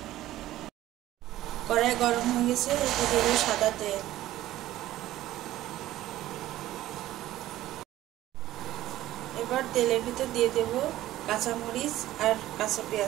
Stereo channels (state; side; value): quieter; left; 14.7 dB